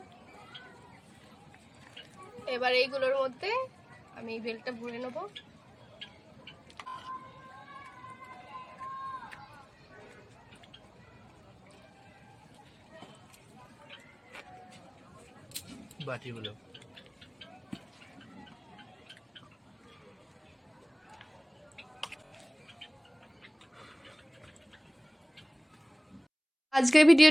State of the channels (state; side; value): identical; both; correlation 1.00